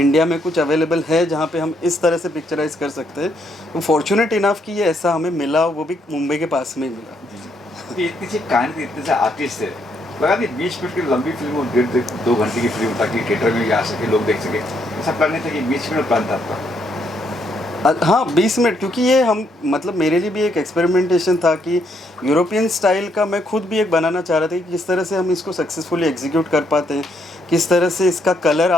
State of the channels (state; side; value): normal; both; correlation 0.73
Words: में कुछ अवेलेबल है जहाँ पे हम इस तरह से पिक्चराइज कर सकते हैं, तो फॉर्चुनेट इनफ कि ये ऐसा हमें मिला, वो भी मुंबई के पास में ही मिला। ये इतनी सी कहानी थी, इतने से आर्टिस्ट है, लगा नहीं 20 मिनट की लंबी फिल्म और 1.5-2 घंटे की फिल्म ताकि थिएटर में भी आ सके, लोग देख सके, ऐसा प्लान नहीं था कि 20 मिनट प्लान था आपका? हाँ 20 मिनट, क्योंकि ये हम मतलब मेरे लिए भी एक एक्सपेरिमेंटेशन था कि यूरोपियन स्टाइल का मैं खुद भी एक बनाना चाह रहा था कि किस तरह से हम इसको सक्सेसफुली एग्जीक्यूट कर पाते हैं, किस तरह से इसका कलर